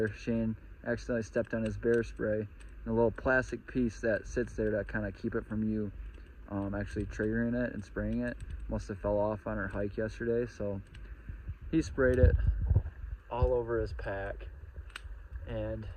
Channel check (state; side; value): identical; both; correlation 1.00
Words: Shane accidentally stepped on his bear spray, and a little plastic piece that sits there to kind of keep it from you actually triggering it and spraying it must have fell off on our hike yesterday. So he sprayed it all over his pack, and